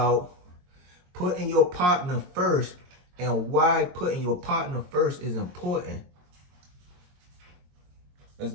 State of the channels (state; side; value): late; left; 22 ms